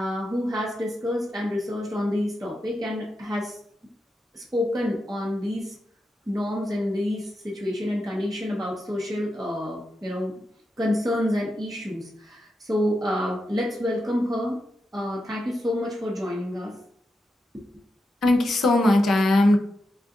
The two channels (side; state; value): both; normal; correlation 0.87